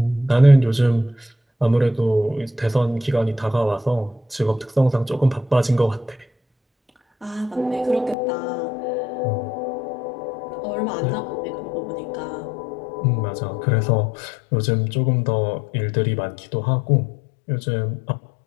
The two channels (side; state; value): right; drops out; at 8.2 s